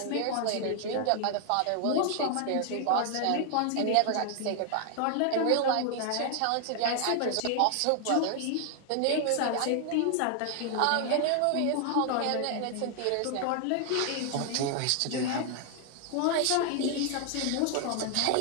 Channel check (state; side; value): different; both; correlation 0.00